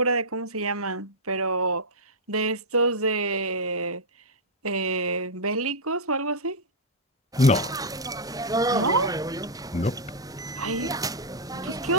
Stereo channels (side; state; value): both; normal; correlation -0.05